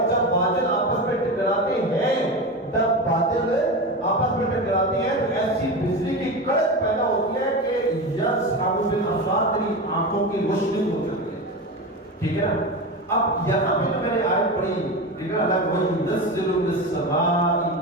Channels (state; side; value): normal; both; correlation 0.23